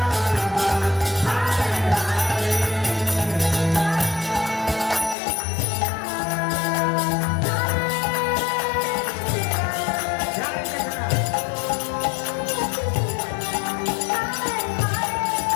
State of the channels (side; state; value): right; drops out; at 5.2 s